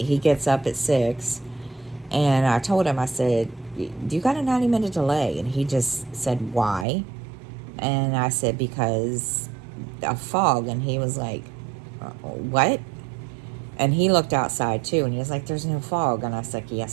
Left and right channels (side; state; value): left; drops out; at 6.9 s